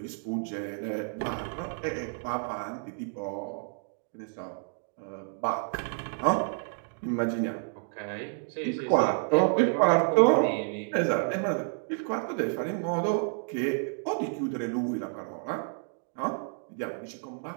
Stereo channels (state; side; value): silent; left; 58 dB below the other